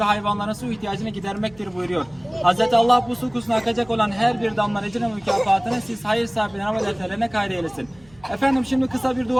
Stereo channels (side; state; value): right; noise; hum, 27 dB below the sound